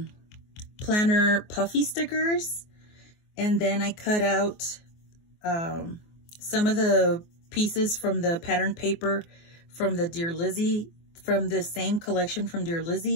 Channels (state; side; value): late; right; 24 ms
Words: planner puffy stickers. And then I cut out some of the pieces from the pattern paper from the Dear Lizzie, from the same collection from Dear